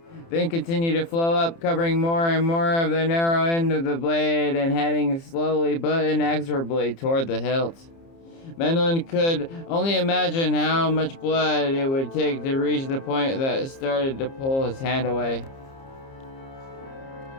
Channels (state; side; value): late; right; 30 ms